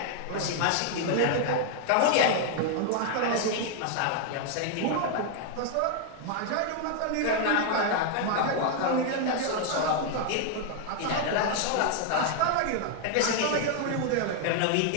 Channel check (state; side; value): different; both; correlation 0.00